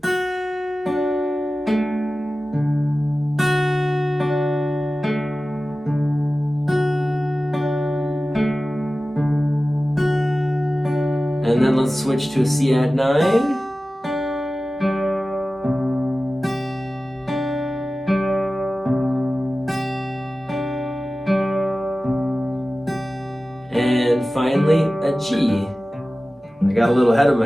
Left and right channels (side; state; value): both; normal; correlation 0.96